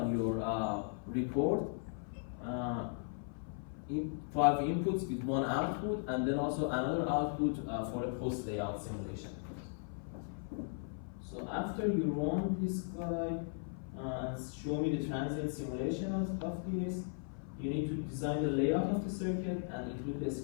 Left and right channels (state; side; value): silent; right; 53 dB below the other